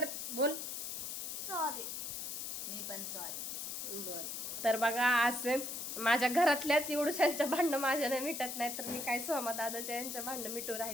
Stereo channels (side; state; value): left; noise; hiss, 5 dB below the sound